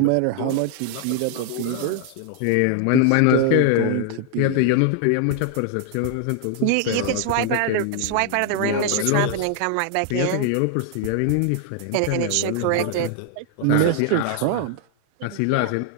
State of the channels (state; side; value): different; both; correlation 0.00